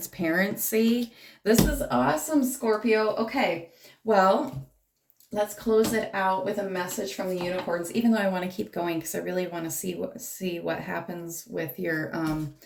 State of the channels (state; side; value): identical; both; correlation 1.00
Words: This is awesome, Scorpio. Okay, well, let's close it out with a message from the unicorns, even though I want to keep going, because I really want to see what happens with your